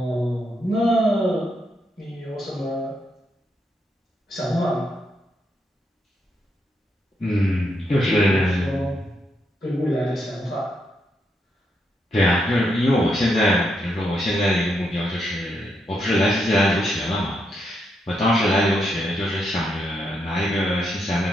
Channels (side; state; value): both; normal; correlation 0.80